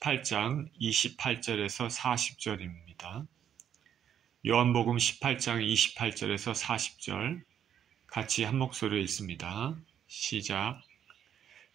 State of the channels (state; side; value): quieter; left; 9.2 dB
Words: 28절에서 40절입니다. 요한복음 18장 28절에서 40절 같이 한 목소리로 읽습니다. 시작.